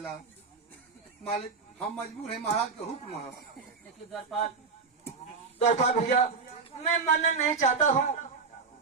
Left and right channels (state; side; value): quieter; left; 4.9 dB